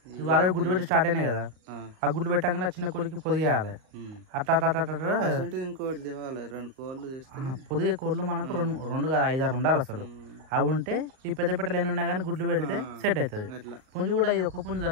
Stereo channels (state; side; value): late; left; 38 ms